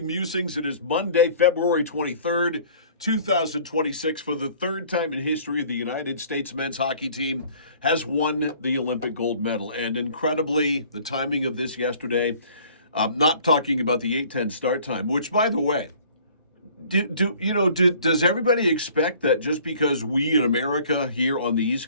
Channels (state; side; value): inverted; both; correlation -0.53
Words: Musings. It is Monday, February 23rd, 2026. For the third time in history, the United States men's hockey team has won the Olympic gold medal. And incredibly, the timing of this yesterday, not talking about the 8:10 start time, which, by the way, does everybody expect that just because we in America here on the